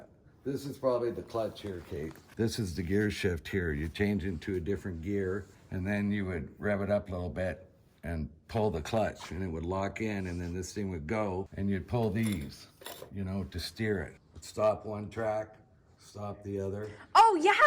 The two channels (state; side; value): identical; both; correlation 1.00